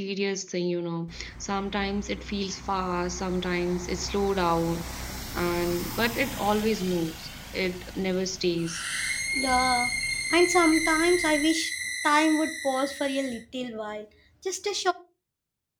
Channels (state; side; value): identical; both; correlation 1.00